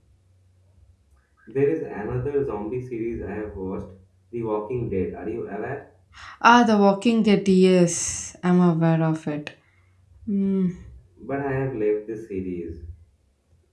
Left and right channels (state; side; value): identical; both; correlation 1.00